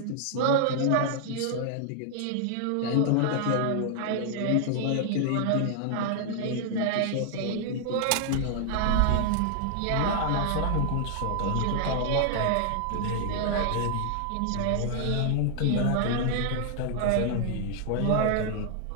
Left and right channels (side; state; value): both; different; correlation 0.00